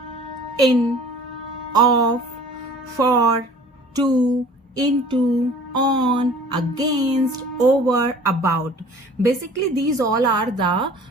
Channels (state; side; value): normal; both; correlation 0.47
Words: in, of, for, to, into, on, against, over, about. Basically these all are the